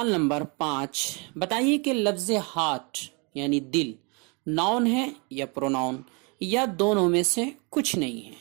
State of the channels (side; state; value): left; quieter; 31.7 dB